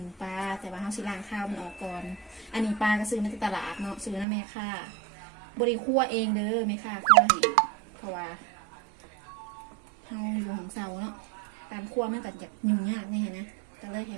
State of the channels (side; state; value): left; drops out; at 4.2 s